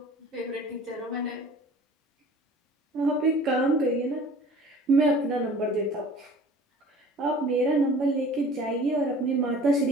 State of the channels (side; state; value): both; normal; correlation 0.46